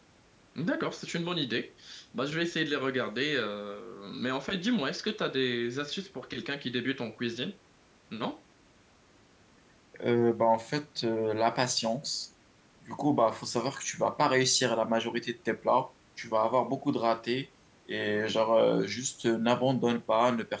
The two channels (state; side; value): identical; both; correlation 1.00